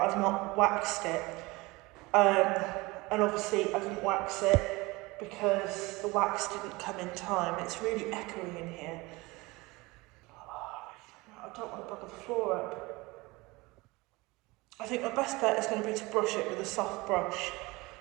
I've not waxed it. And obviously I didn't wax it because the wax didn't come in time. It's really echoey in here. I don't want to bugger the floor up. I think my best bet is going to be to brush it with a soft brush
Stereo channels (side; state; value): left; quieter; 23.0 dB